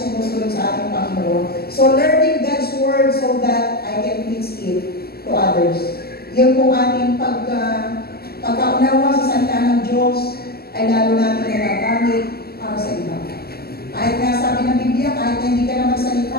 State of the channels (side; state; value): right; late; 0.45 ms